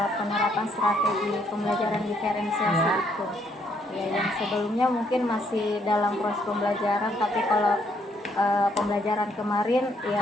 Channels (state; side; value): normal; both; correlation 0.70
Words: penerapan strategi pembelajaran diferensiasi Ya. itu. Ya, yang sebelumnya mungkin masih dalam proses pembelajaran, tapi kalau pembelajaran kemarin